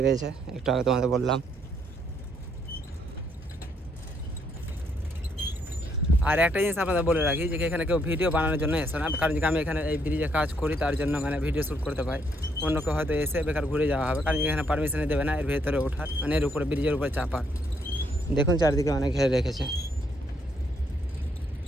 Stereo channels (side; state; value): both; normal; correlation 0.72